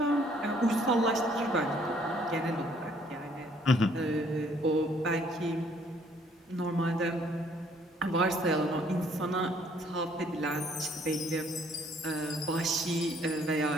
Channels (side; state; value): both; normal; correlation 0.63